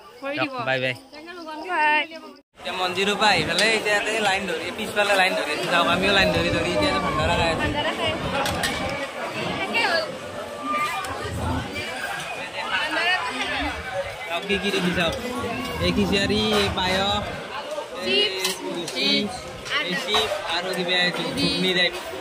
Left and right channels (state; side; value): identical; both; correlation 1.00